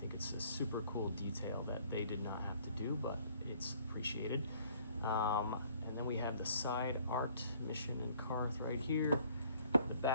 it's a super cool detail that they did not have to do, but it's appreciated. And then we have the side art, Mission and Carth right here. The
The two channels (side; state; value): both; inverted; correlation -0.59